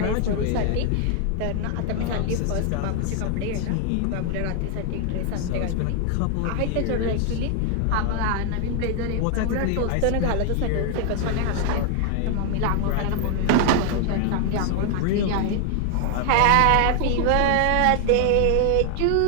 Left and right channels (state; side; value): different; both; correlation 0.00